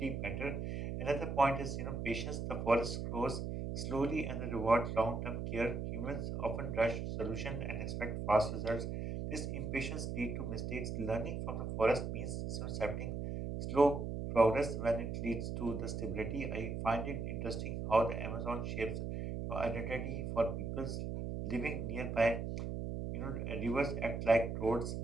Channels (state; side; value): noise; right; hum, 3 dB below the sound